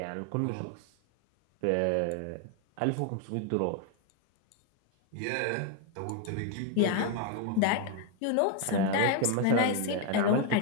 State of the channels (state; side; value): different; both; correlation 0.01